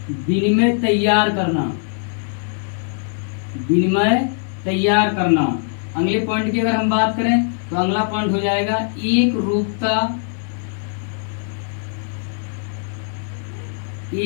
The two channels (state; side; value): silent; right; 59 dB below the other